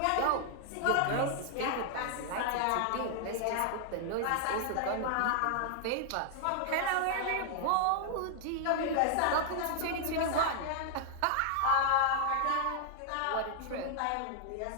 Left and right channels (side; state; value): both; different; correlation 0.00